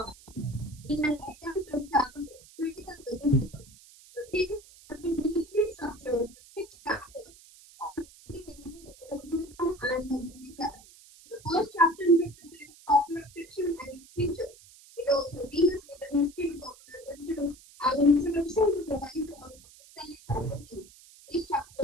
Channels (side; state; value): right; noise; hiss, 22 dB below the sound